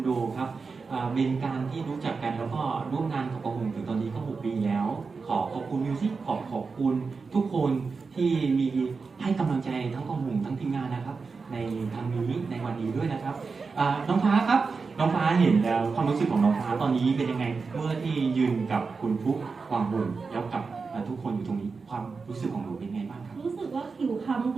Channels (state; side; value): quieter; left; 4.7 dB